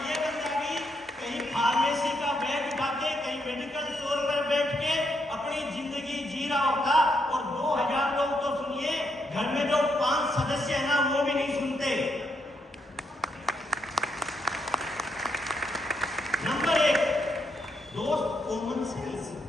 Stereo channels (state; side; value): normal; both; correlation 0.78